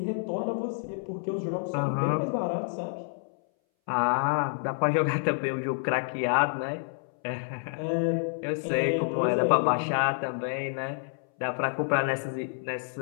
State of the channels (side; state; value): right; silent; 59 dB below the other